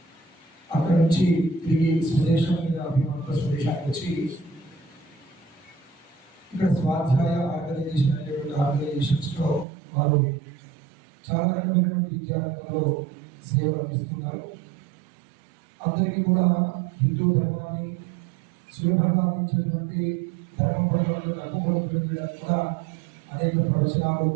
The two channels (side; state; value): left; drops out; at 9.7 s